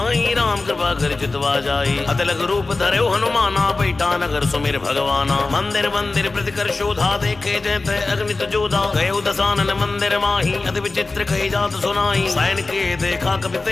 राम कृपा कर चितवा जाई। अतलग रूप धरे हनुमाना, बैठा नगर सुमेर भगवाना। मंदिर मंदिर प्रतिकर शोधा, देखे जयते अग्नित जोधा। गए दसानन मंदिर माही, अति विचित्र कही जात सुनाई। सैन के देखा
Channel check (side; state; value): right; quieter; 3.5 dB